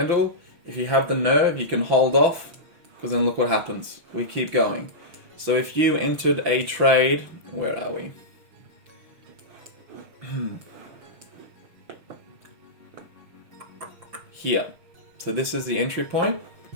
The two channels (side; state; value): left; late; 5.9 ms